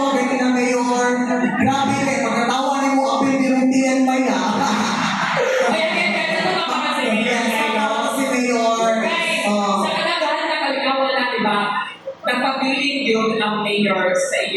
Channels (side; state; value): both; identical; correlation 1.00